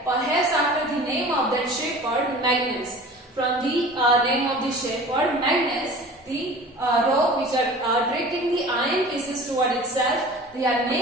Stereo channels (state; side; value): normal; both; correlation 0.41